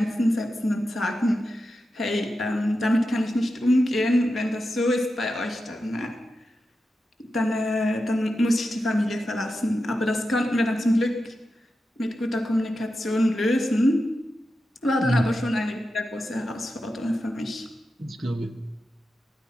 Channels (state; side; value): normal; both; correlation 0.90